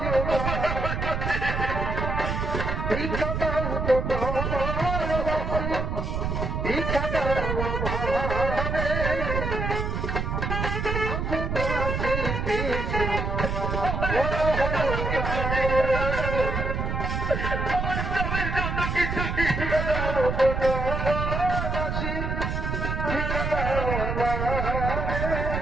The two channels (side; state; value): right; noise; rumble, 2 dB below the sound